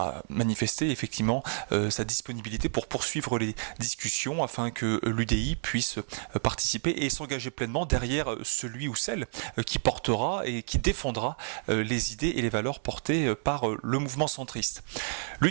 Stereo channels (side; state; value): left; silent; digital silence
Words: manifesté effectivement sa disponibilité pour poursuivre les discussions afin que l'UDI puisse participer et s'engager pleinement derrière celui ou celle qui portera et qui défendra les idées et les valeurs portées par le mouvement centriste.